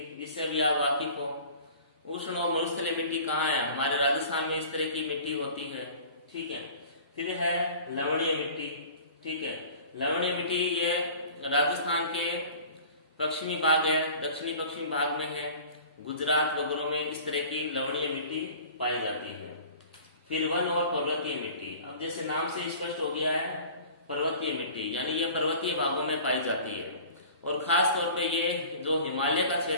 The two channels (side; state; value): both; inverted; correlation -0.44